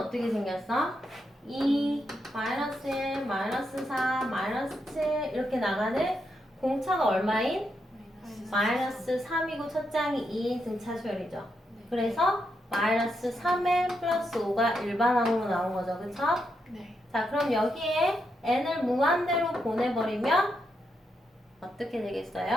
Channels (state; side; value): normal; both; correlation 0.82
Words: 생겼어? 2, 마이너스 1, 마이너스 4, 마이너스 7 이렇게 나가는 공차가 얼마인? 마이너스 3이고 첫 장이 2인 등차 수열이죠. 그래서 마이너스 3에 플러스 5가 일반항으로 나온 거죠. 그쵸? 네. 자, 그럼 여기에 n을 무한대로 보내버리면 어떻게